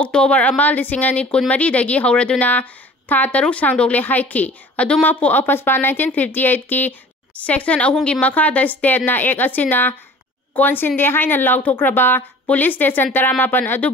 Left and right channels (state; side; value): normal; both; correlation 0.46